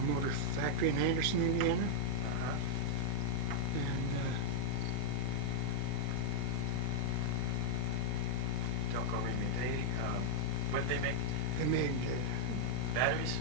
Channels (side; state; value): both; normal; correlation -0.03